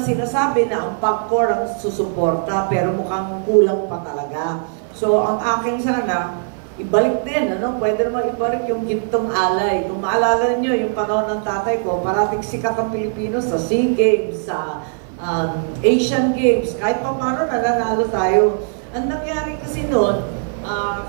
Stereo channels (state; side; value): silent; left; 55 dB below the other